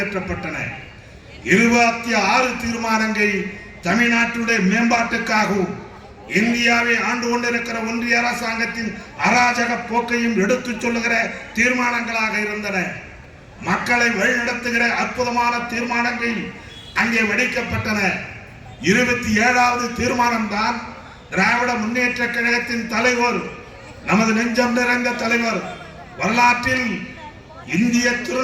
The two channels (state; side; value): identical; both; correlation 1.00